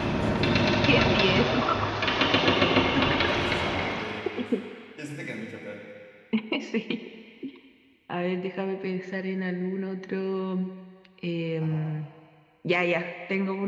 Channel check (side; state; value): both; identical; correlation 1.00